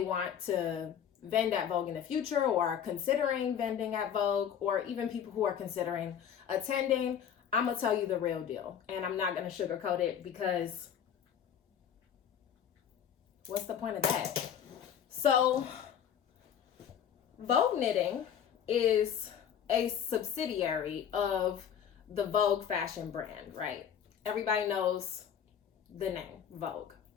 want to vend at Vogue in the future or are considering vending at Vogue, or even people who are considering attending. I'm gonna tell you the real deal, and I'm not gonna sugarcoat it, because what's the point of that? So Vogue Knitting is a subsidiary of the Vogue fashion brand, right? Everybody knows the name Vogue.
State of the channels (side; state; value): right; quieter; 8.7 dB